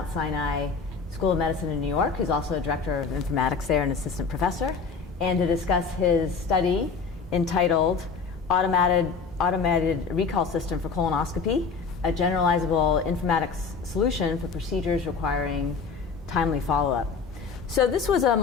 Sinai School of Medicine in New York, who's also Director of Informatics there and Assistant Professor, and to discuss his study entitled Automated Recall System for Colonoscopy, a generalizable informatics solution for procedures requiring timely follow-up. So this was a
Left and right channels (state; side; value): quieter; right; 5.1 dB